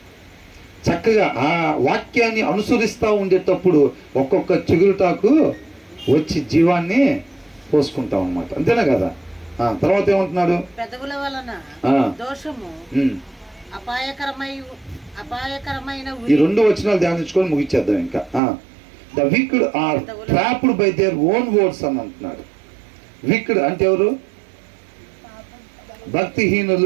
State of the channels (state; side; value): drops out; left; at 18.4 s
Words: చక్కగా ఆ వాక్యాన్ని అనుసరిస్తూ ఉండేటప్పుడు ఒక్కొక్క చిగురుటాకు వచ్చి జీవాన్ని పోసుకుంటాం అనమాట. అంతేనా కదా? తర్వాత ఏమంటున్నాడు? పెదవుల వలన దోషము అపాయకరమైన ఈ 2 వచనాలు ధ్యానించుకొని ముగించేద్దాం ఇంకా. The wicked are trapped by their own words అని అంటున్నాడు. విక్డ్ అంటే ఎవరు?